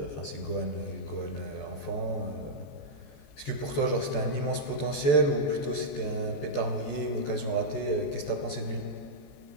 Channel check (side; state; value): right; late; 14 ms